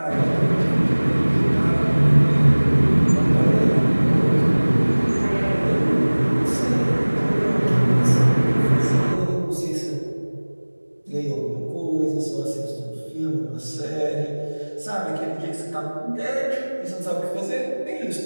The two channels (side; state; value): both; inverted; correlation -1.00